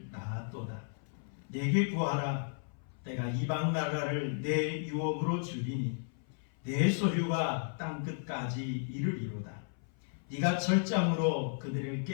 낳았도다. 내게 구하라. 내가 이방 나라를 내 유업으로 주리니 내 소유가 땅 끝까지 이르리로다. 네가 철장으로 그들을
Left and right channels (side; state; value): right; silent; 55 dB below the other